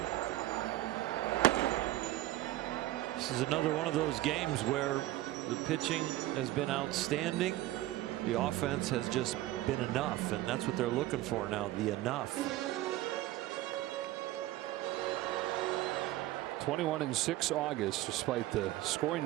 This is another one of those games where the pitching has been outstanding. The offense has just been enough, and that's what they're looking for now, the enough. 21-6 August, despite the scoring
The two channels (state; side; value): quieter; left; 16.1 dB